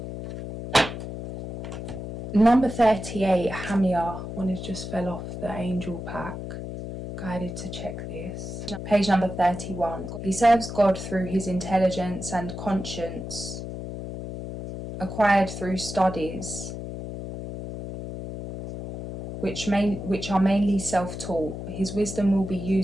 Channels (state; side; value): noise; left; hum, 8 dB below the sound